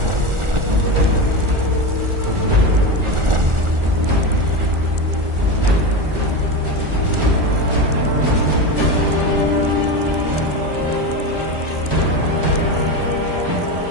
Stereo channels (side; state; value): left; late; 1.4 ms